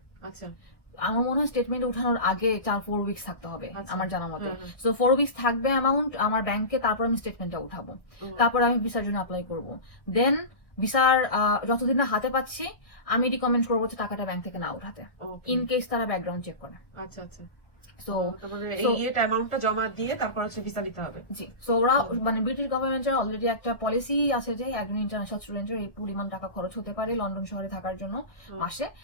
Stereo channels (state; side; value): late; right; 1.1 ms